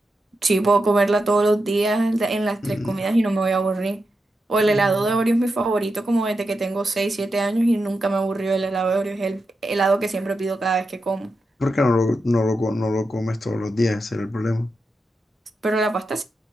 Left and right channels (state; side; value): normal; both; correlation 0.88